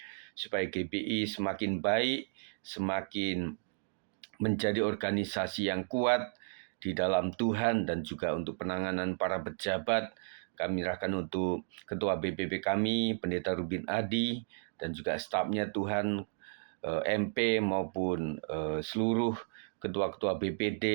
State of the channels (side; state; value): left; silent; digital silence